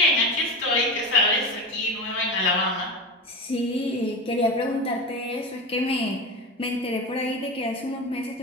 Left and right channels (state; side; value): normal; both; correlation 0.23